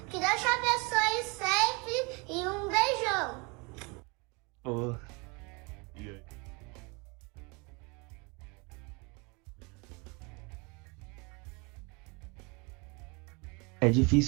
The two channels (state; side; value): quieter; left; 29.5 dB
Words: que Deus te abençoe sempre e um beijão. Oh. É